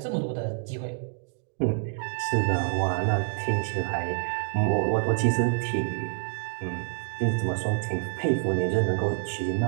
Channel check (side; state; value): left; silent; digital silence